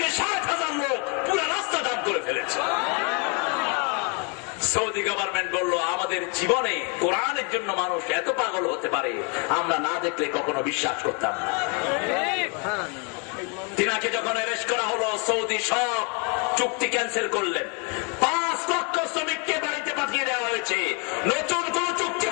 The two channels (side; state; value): right; quieter; 35.4 dB